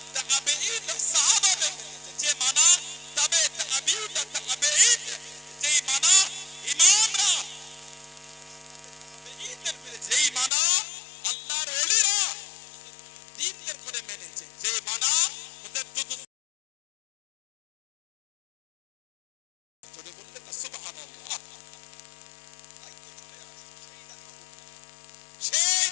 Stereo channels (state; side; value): drops out; right; at 10.5 s